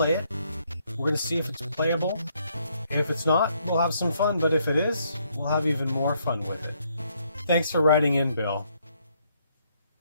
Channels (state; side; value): inverted; both; correlation -0.72